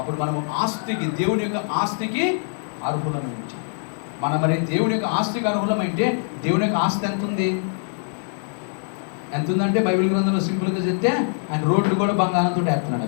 మనము ఆస్తికి, దేవుని యొక్క ఆస్తికి అర్హులమై ఉంటాం. మనం మరి దేవుని యొక్క ఆస్తికి అర్హులమైతే దేవుని యొక్క ఆస్తి ఎంత ఉంది? ఎంత ఉందంటే బైబిల్ గ్రంథంలో సింపుల్గా చెప్తే ఆయన రోడ్లు కూడా బంగారంతో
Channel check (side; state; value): right; silent; digital silence